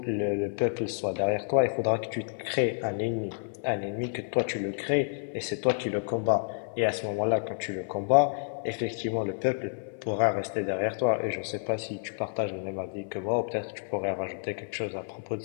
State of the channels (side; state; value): right; silent; 58 dB below the other